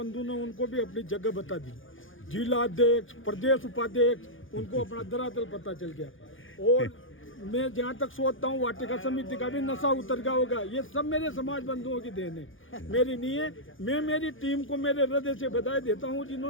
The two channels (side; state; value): right; late; 0.58 ms